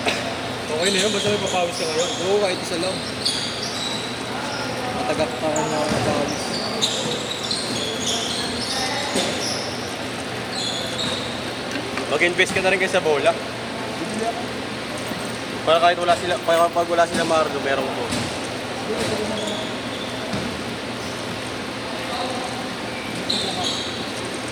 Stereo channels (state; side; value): identical; both; correlation 1.00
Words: Okay na yun, basta may papawis ka ngayon. Oo, kahit isa lang. Matagak pa ako na pawis. Mag-invest ka na rin kayo sa bola. Para kahit wala sila, pag wala sila Marlo, meron ko.